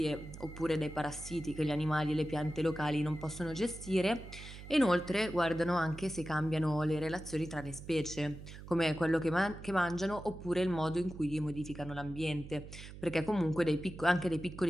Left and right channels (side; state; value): right; noise; hum, 13 dB below the sound